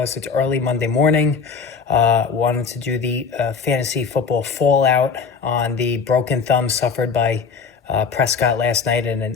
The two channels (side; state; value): right; quieter; 5.6 dB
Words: It's early Monday morning. Wanted to do the fantasy football fallout on the broken thumb suffered by Prescott last night in an